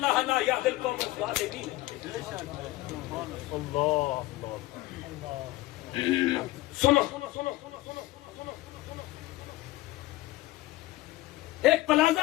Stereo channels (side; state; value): right; quieter; 18.3 dB